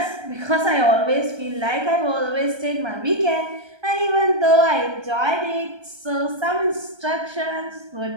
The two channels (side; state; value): left; late; 1.3 ms